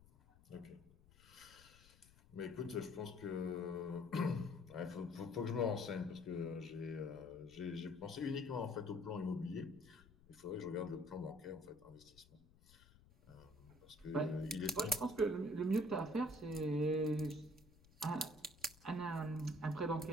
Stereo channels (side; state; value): left; noise; rumble, 24 dB below the sound